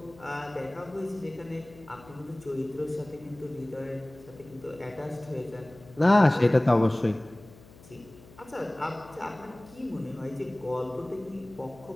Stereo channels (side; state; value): left; noise; hum, 22 dB below the sound